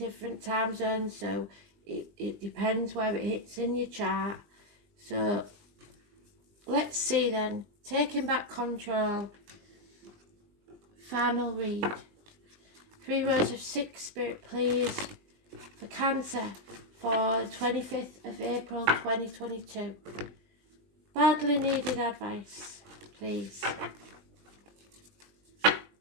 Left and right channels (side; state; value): left; late; 20 ms